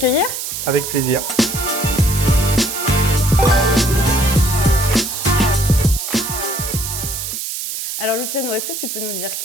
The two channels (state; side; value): noise; right; hiss, 5 dB below the sound